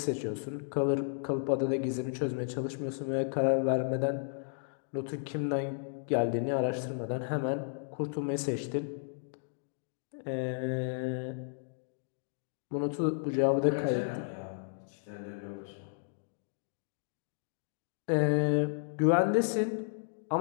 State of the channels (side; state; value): right; silent; digital silence